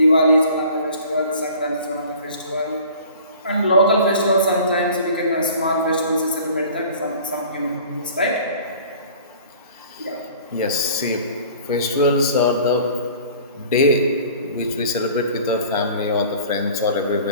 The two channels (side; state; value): both; inverted; correlation -0.47